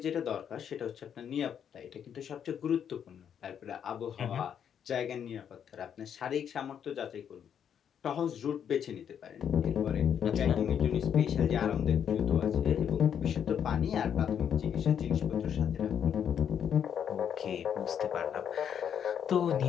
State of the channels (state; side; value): quieter; right; 8.5 dB